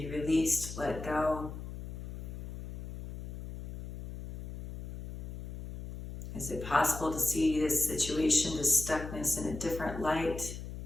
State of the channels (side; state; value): left; noise; hum, 9 dB below the sound